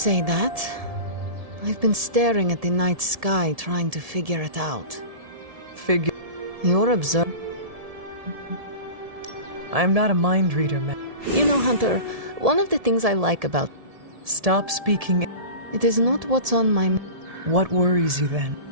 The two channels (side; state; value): left; late; 1.7 ms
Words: that. I've been staring at the night sky, trying to figure it out. You're observing. I'm not a mind reader, man. You know, Hunter, one of the things I like about... Stop speaking. It is not what's on my... What worries you then?